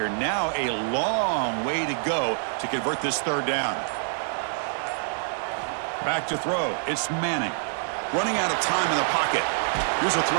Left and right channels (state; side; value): silent; left; 59 dB below the other